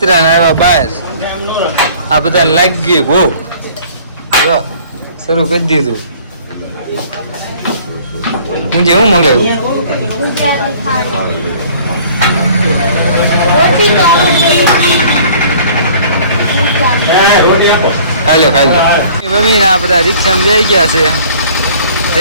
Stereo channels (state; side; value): inverted; both; correlation -0.52